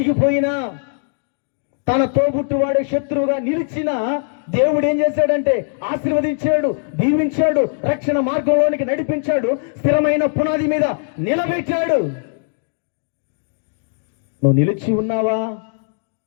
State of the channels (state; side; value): silent; right; digital silence